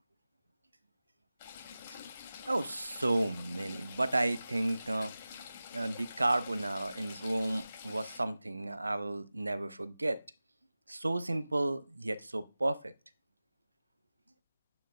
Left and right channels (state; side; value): inverted; both; correlation -0.97